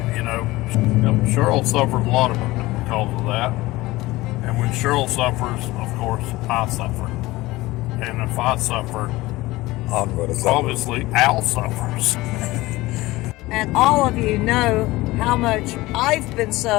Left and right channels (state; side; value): quieter; right; 19.3 dB